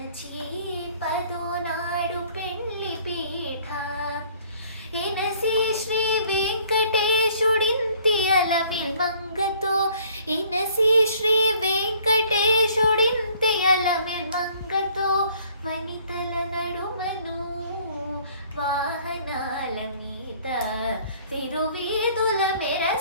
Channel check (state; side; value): inverted; both; correlation -0.58